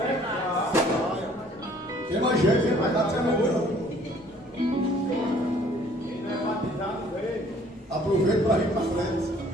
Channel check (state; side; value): normal; both; correlation 0.57